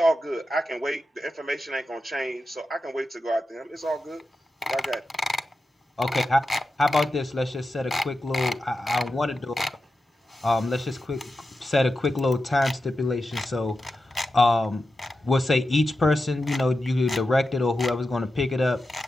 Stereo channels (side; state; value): both; normal; correlation 0.91